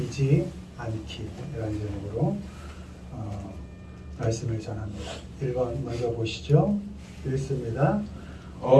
말씀을 전합니다. 1번 먼저 보시죠. 읽습니다.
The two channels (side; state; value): both; identical; correlation 1.00